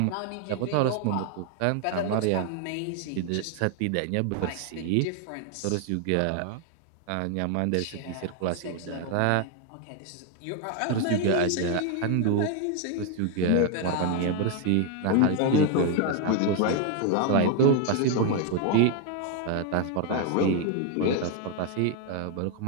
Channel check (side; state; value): both; different; correlation 0.01